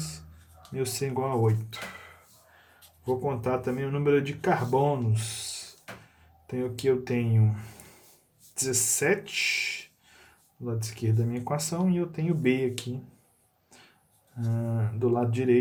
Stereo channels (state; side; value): identical; both; correlation 1.00